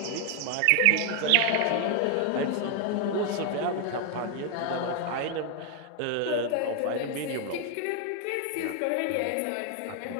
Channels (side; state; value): both; different; correlation 0.00